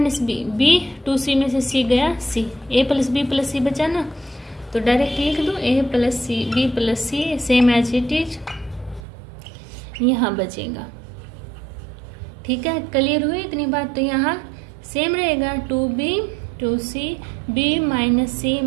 बी, b 2c में से c गया c, a plus B plus C बचा ना, तो डायरेक्ट लिख दो a plus C B plus C same as it is यहाँ बचेगा। ठीक है, क्लियर हुई इतनी बात? तो यहाँ सेम रहेगा 2b 2c b minus C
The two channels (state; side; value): drops out; left; at 9.0 s